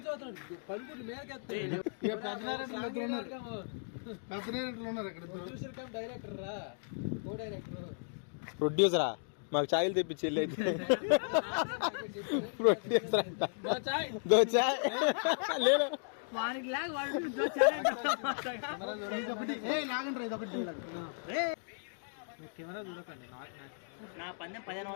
చూస్తున్నాడు పడుకుంటు మేరకెత్తాయి డైరెక్టర్ రా కో డైరెక్టర్ ప్రొడ్యూసరా మాకు ఛాయలు తెప్పించి వెళ్ళి అయితే ప్రొడ్యూసర్ అంట దో చాయ్ లేదు కెమెరా చూడకండి. నా పందెం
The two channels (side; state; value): right; silent; digital silence